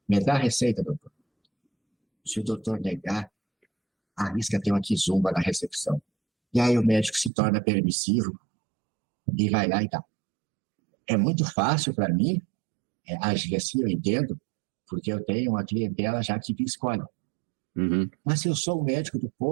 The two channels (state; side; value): drops out; left; at 7.3 s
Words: Me dá a receita, doutor. Se o doutor negar, arrisca ter uma quizumba na recepção. E aí o médico se torna permissivo e vai lá e dá. É muito fácil para mim agir assim, eu entendo, porque eu tenho uma clientela já que escolhe. Uhum. Mas se eu sou o médico do